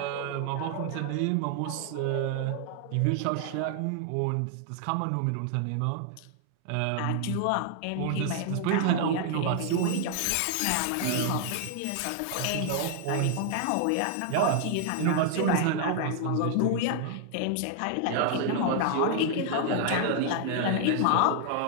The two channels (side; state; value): both; different; correlation 0.00